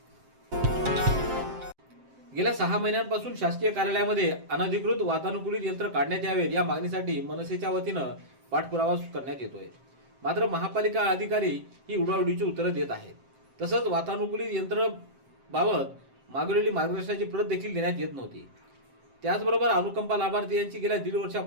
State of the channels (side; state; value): left; late; 7.6 ms